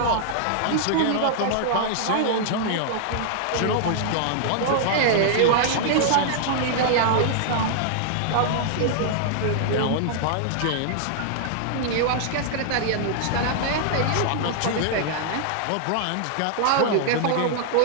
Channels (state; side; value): different; both; correlation -0.01